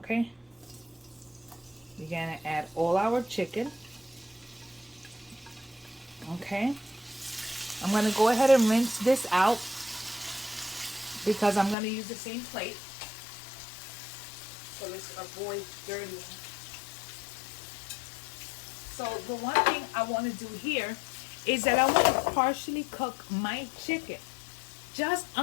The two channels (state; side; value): drops out; right; at 11.8 s